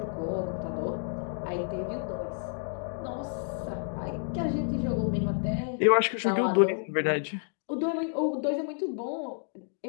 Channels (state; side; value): silent; right; digital silence